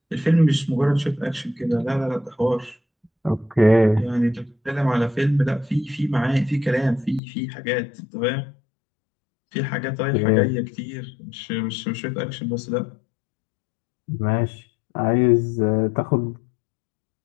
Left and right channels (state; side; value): drops out; right; at 7.2 s